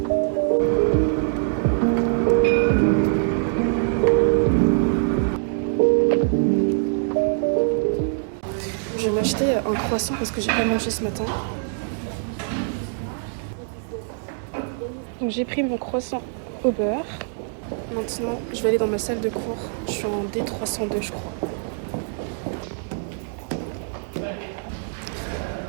Je vais m'acheter un croissant parce que j'ai pas mangé ce matin. Donc j'ai pris mon croissant au beurre. Maintenant, je vais aller dans ma salle de cours. Je suis en D302, je crois.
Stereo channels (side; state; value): left; silent; digital silence